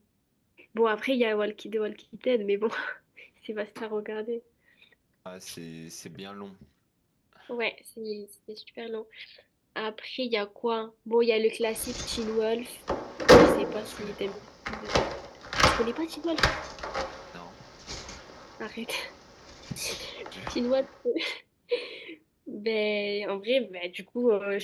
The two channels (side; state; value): both; identical; correlation 1.00